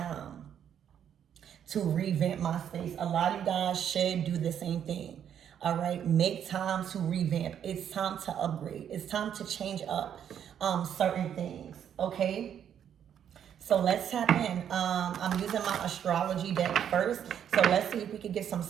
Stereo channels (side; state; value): left; quieter; 9.1 dB